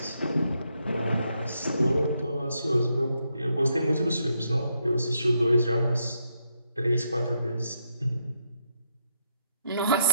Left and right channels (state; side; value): inverted; both; correlation -0.78